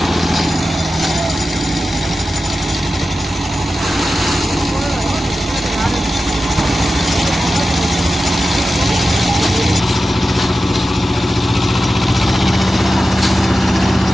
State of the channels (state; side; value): normal; both; correlation 0.93